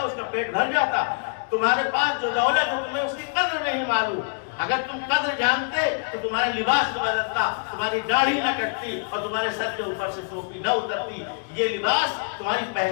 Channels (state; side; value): quieter; right; 39.9 dB